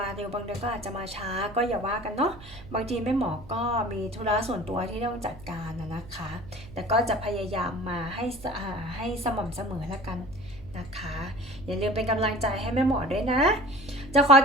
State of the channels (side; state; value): right; noise; hum, 19 dB below the sound